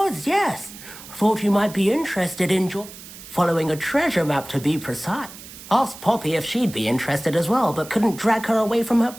yes. Thought you might be interested in following a treasure map, to be precise. Asked Poppy if she'd be interested as well, but couldn't drag her away from her.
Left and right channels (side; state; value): right; noise; hiss, 16 dB below the sound